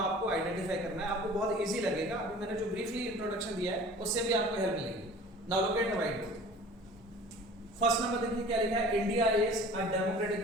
आइडेंटिफाई करना है। आपको बहुत इजी लगेगा। अभी मैंने जो ब्रीफली इंट्रोडक्शन दिया है उससे भी आपको हेल्प मिलेगी। Now look at the white board. First number देखिए क्या लिखा है? India is a democratic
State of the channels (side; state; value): both; normal; correlation 0.45